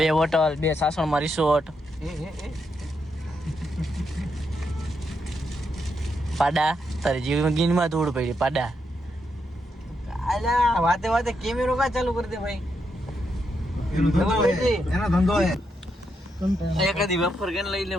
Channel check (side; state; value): both; normal; correlation 0.81